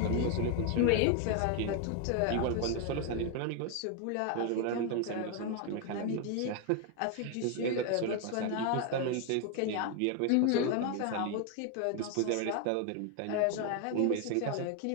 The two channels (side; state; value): both; different; correlation 0.01